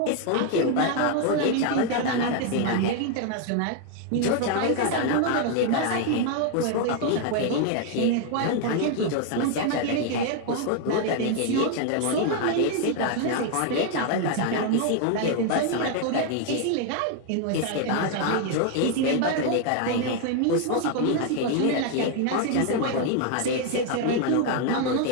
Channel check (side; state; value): both; different; correlation 0.00